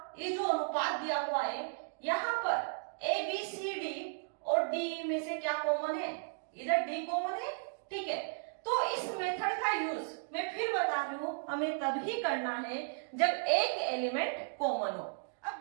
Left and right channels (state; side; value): silent; left; digital silence